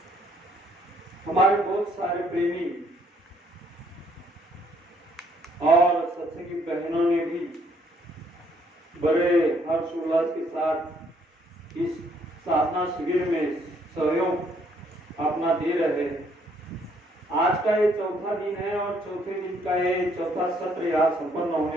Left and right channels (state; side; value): normal; both; correlation 0.67